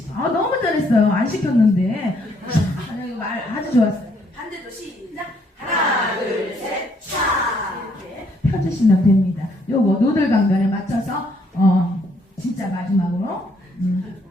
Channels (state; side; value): normal; both; correlation 0.69